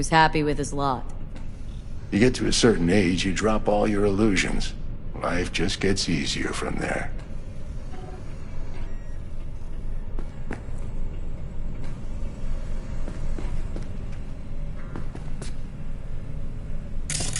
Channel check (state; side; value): identical; both; correlation 1.00